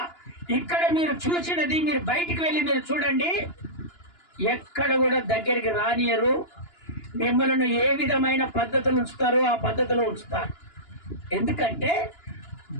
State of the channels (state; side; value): late; right; 2.9 ms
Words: ఇక్కడ మీరు చూసినది మీరు బయటికి వెళ్ళి మీరు చూడండి. ఎక్కడ కూడా దగ్గరికి రానియరు. మిమ్మల్ని ఏ విధమైన పద్ధతులు ఉంచుతారో ఆ పద్ధతిలో ఉంచుతారు. ఎందుకంటే